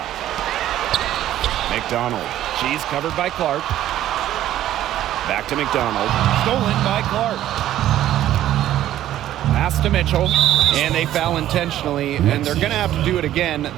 McDonald. She's covered by Clark. Back to McDonald. Stolen by Clark. Pass to Mitchell. And they foul intentionally, and they're going to have to do it again.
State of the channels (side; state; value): left; quieter; 12.8 dB